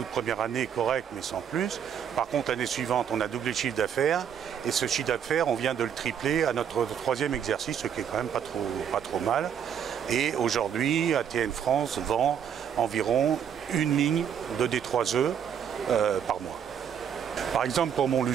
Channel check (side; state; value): left; quieter; 8.3 dB